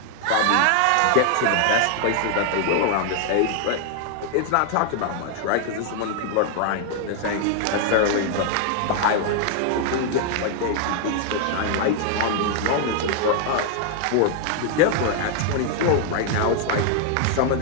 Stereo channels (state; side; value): different; both; correlation 0.00